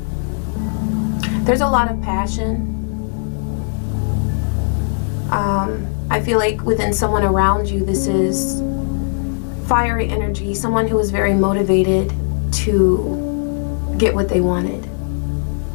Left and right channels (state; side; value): silent; right; 64 dB below the other